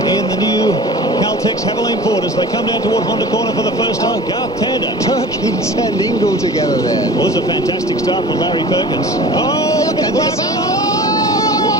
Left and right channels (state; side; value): normal; both; correlation 0.39